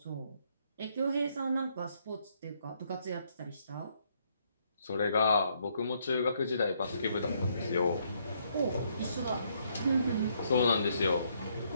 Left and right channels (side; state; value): both; inverted; correlation -0.71